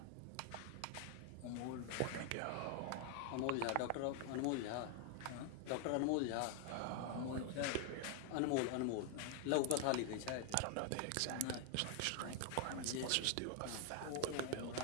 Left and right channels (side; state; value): both; different; correlation 0.00